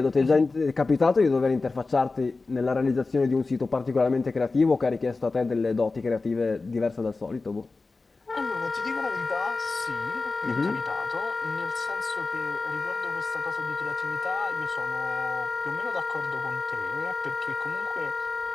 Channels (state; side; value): quieter; right; 3.8 dB